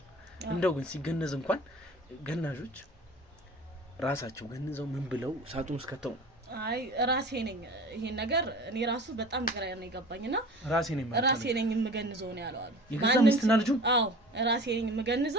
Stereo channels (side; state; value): both; normal; correlation 0.40